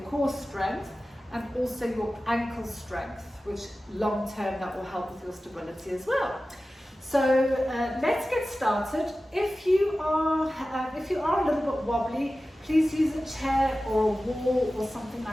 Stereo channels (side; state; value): both; normal; correlation 0.95